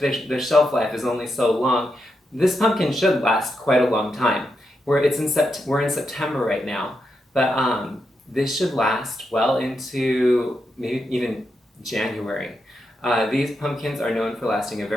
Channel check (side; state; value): both; normal; correlation 0.85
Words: their shelf life is only so long. This pumpkin should last quite a long time. We're in September right now, but this should last well into maybe even January. These pumpkins are known for lasting a